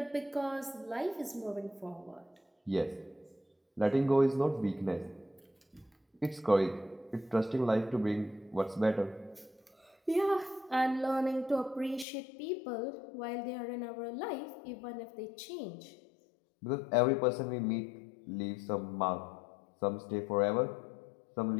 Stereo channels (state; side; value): drops out; right; at 12.1 s